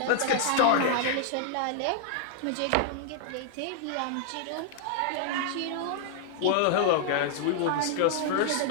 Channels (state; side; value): different; both; correlation -0.01